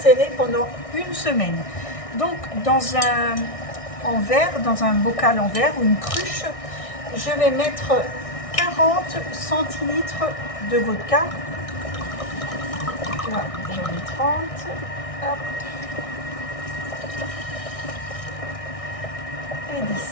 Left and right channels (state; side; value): late; right; 1.6 ms